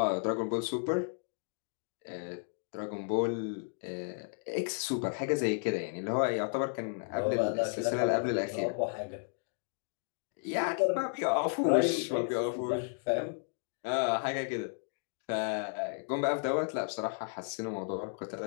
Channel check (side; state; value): right; silent; digital silence